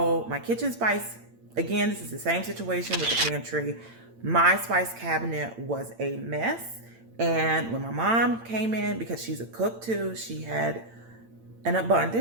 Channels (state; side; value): late; left; 8.8 ms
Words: my kitchen spice, again, this is the same situation with the pantry. My spice cabinet was a mess, and when my mom came in, because she's a cook too, she had an